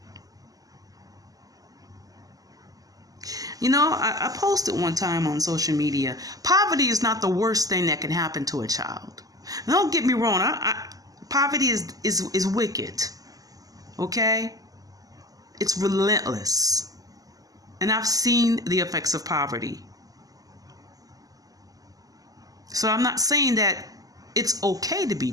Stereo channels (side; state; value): left; late; 0.17 ms